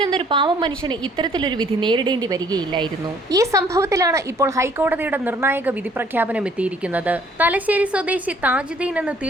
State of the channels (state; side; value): normal; both; correlation 0.60